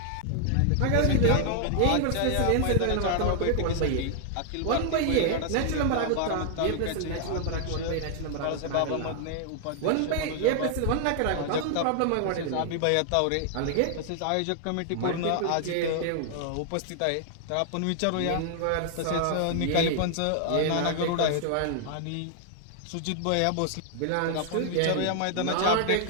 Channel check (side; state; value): both; different; correlation 0.00